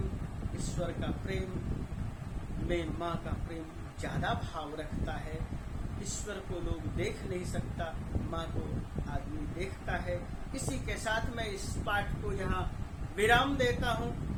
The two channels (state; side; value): identical; both; correlation 1.00